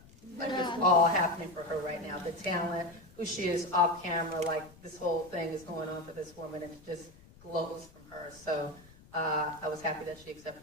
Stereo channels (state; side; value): noise; left; rumble, 23 dB below the sound